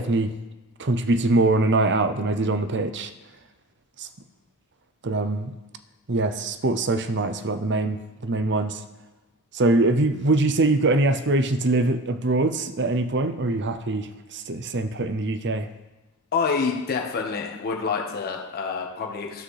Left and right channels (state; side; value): normal; both; correlation 0.34